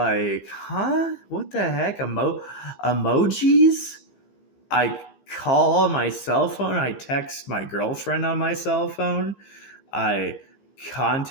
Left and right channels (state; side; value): late; right; 15 ms